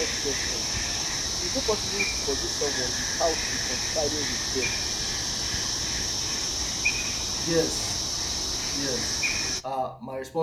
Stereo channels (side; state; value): both; identical; correlation 1.00